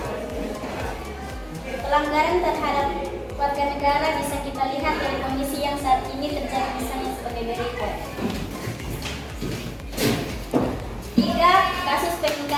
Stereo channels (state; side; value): identical; both; correlation 1.00